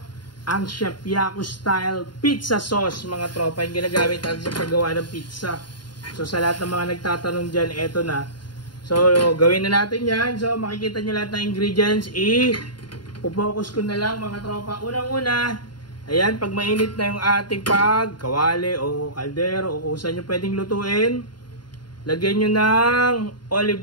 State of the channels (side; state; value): right; late; 0.71 ms